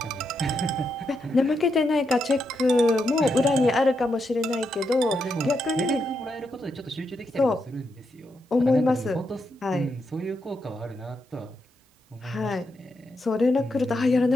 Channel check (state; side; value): normal; both; correlation 0.82